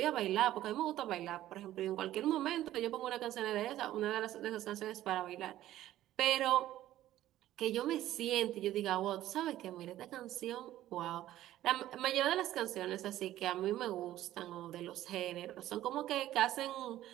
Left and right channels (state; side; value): quieter; left; 13.8 dB